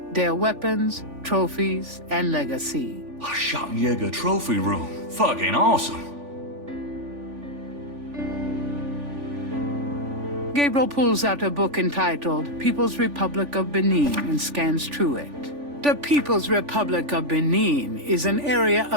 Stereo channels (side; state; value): left; late; 3.5 ms